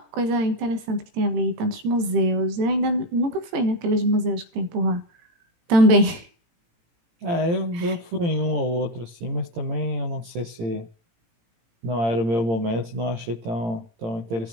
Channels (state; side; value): late; left; 18 ms